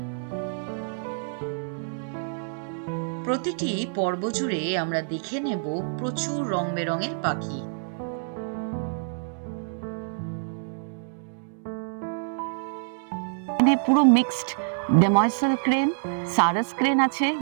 প্রতিটি পর্ব জুড়ে আমরা দেখে নেব প্রচুর রং বেরঙের পাখি। পুরো মিক্সড ডেময়সেল ক্রেন, সারাস ক্রেন আছে,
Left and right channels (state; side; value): silent; left; 60 dB below the other